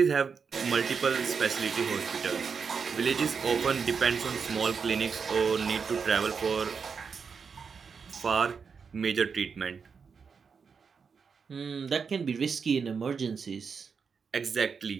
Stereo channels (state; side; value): quieter; left; 5.8 dB